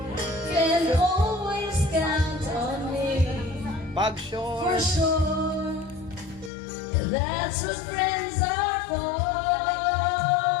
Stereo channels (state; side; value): drops out; right; at 6.5 s